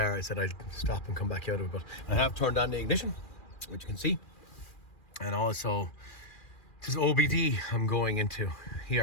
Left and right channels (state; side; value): late; right; 2.4 ms